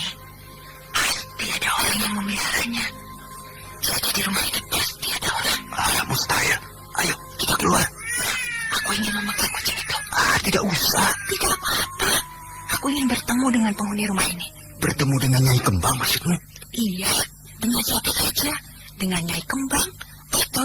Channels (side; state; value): both; identical; correlation 1.00